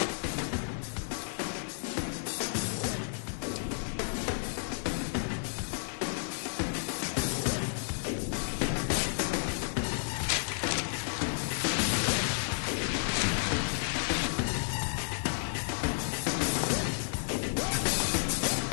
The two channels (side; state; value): right; silent; digital silence